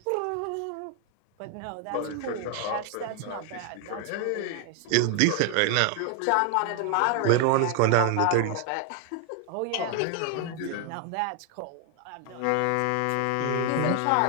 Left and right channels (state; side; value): different; both; correlation 0.00